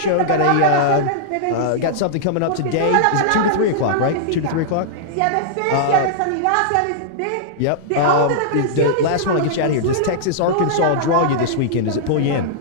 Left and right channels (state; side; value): different; both; correlation -0.02